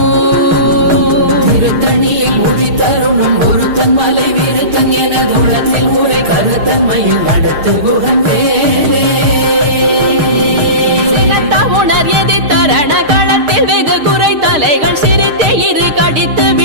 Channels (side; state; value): left; late; 6.5 ms